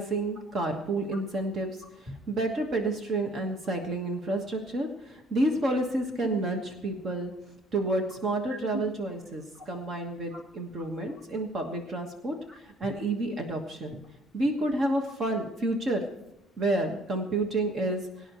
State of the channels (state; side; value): normal; both; correlation 0.57